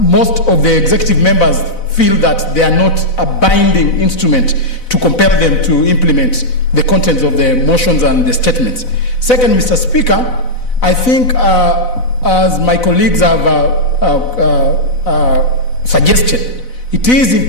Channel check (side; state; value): right; late; 4.0 ms